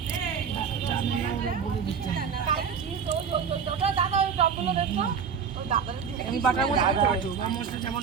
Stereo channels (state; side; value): quieter; left; 6.7 dB